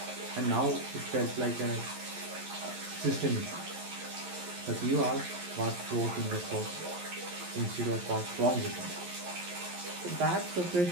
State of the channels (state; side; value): late; left; 11 ms